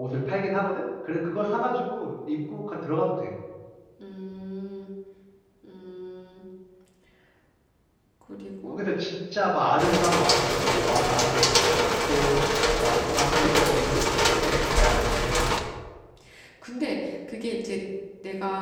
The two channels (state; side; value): identical; both; correlation 1.00